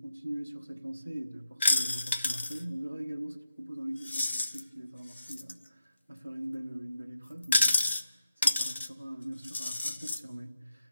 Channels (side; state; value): both; inverted; correlation -0.86